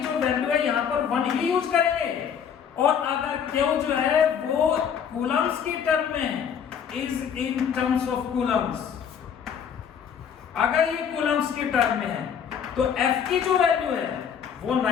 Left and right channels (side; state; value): right; quieter; 7.7 dB